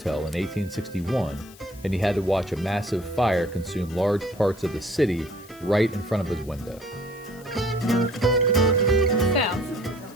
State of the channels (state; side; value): noise; left; hiss, 22 dB below the sound